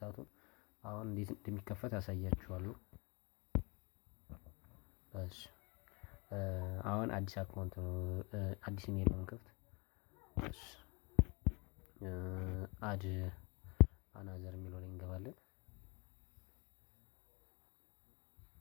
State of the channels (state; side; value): quieter; right; 29.4 dB